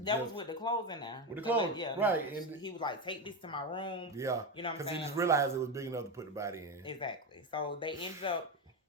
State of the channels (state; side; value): normal; both; correlation 0.14